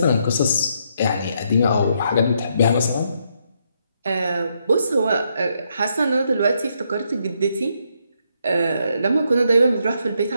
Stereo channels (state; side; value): inverted; both; correlation -0.76